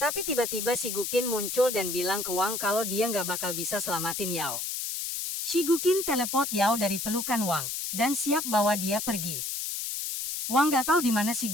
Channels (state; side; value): noise; left; hiss, 4 dB below the sound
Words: tiba-tiba si Guqin muncul dan bilang ke Wang kalau dia gak bakal bisa selamatin Yao. Si Guqin teleport Yao dari pelukan Wang dan siap bawa dia pergi. Wang gak tahu di mana si